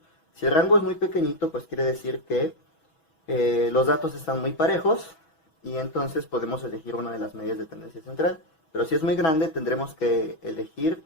Si el rango es muy pequeñito, pues quiere decir que los datos están muy parejos y entonces podemos elegir una de las medidas de tendencia central. Pero si es muy grande, tendremos que elegir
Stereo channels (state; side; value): late; right; 6.1 ms